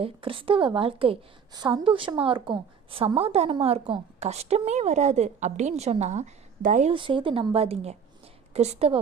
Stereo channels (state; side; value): quieter; left; 6.8 dB